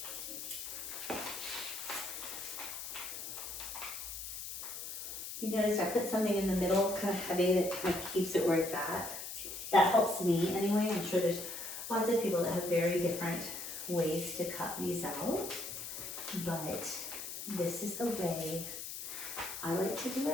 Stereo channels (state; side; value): noise; left; hiss, 7 dB below the sound